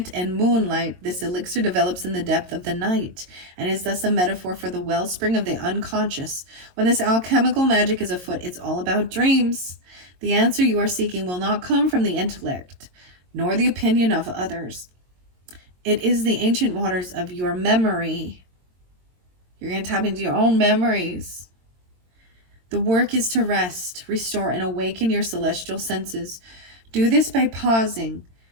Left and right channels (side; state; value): left; late; 22 ms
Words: and moonlight. This elixir develops in the depth of the night and is thus a metaphor for the wellspring of the unconscious. When this alchemical magic is afoot, it's all about dreams. The answer you are seeking will not come from the intellect, nor the opinion of others. It is the ancient waters of your memory. You're going to tap into your own memories. The work is to rest, restore, and awaken your celestial senses. Do this by pausing,